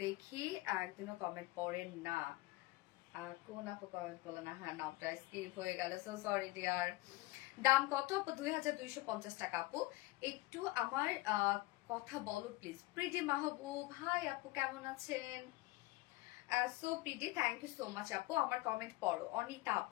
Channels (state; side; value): quieter; right; 20.2 dB